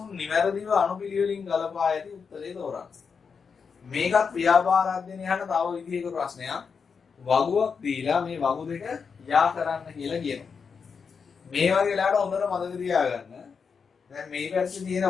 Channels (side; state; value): right; quieter; 5.8 dB